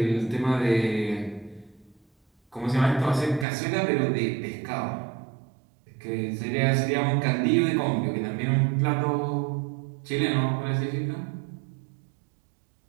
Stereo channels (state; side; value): drops out; left; at 3.5 s